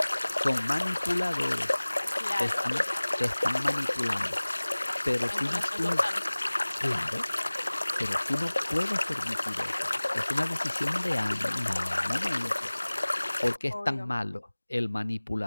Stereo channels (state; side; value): inverted; both; correlation -1.00